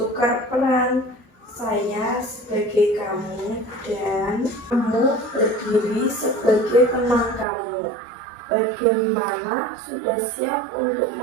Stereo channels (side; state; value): left; drops out; at 7.5 s